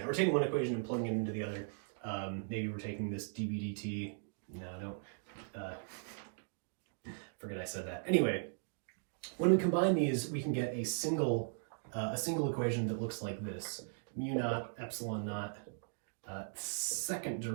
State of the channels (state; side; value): silent; left; digital silence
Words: We're taking one equation and plugging it into the other. Maybe we're taking this dB dt. No, don't. Forget I said that. Anyway, when we combine these, we can get a single equation that looks like this: mu naught epsilon naught second